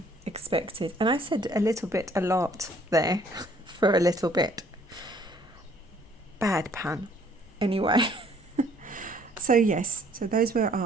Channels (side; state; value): both; normal; correlation 0.60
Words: expected. And I said a little bit a lot there for a little bit. Bad pun. Anyway, so yes, so those were